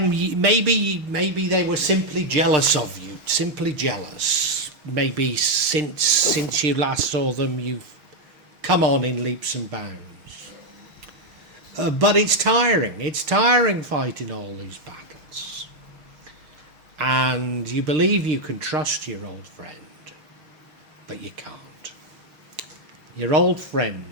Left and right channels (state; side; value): late; left; 6.6 ms